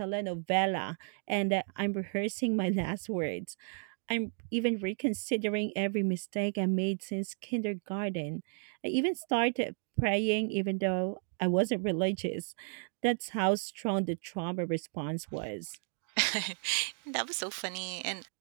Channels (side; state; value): left; silent; 56 dB below the other